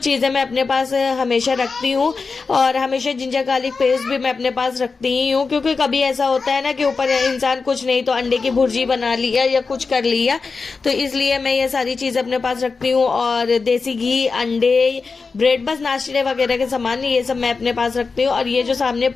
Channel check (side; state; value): right; quieter; 4.5 dB